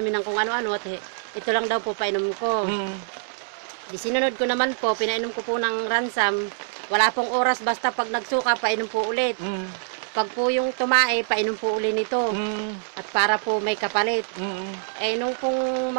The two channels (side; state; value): left; silent; digital silence